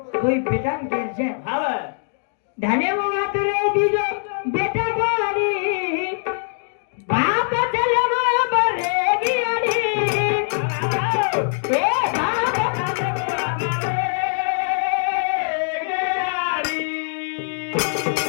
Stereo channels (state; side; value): silent; right; digital silence